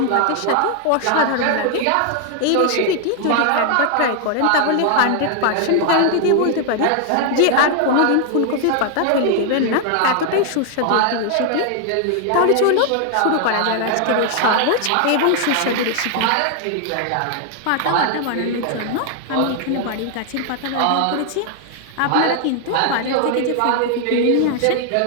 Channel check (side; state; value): both; different; correlation 0.00